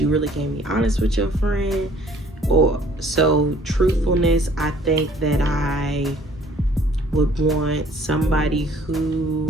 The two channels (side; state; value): both; normal; correlation 0.57